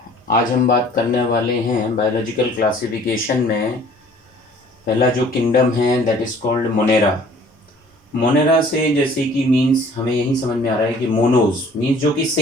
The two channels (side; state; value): both; normal; correlation 0.53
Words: आज हम बात करने वाले हैं बायोलॉजिकल क्लासिफिकेशन में पहला जो किंगडम है that is called Monera. Monera से जैसे कि मीन्स हमें यही समझ में आ रहा है कि मोनोज मीन्स जो कि